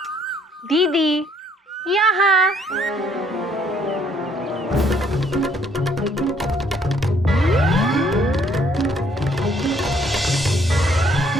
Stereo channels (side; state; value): both; normal; correlation 0.65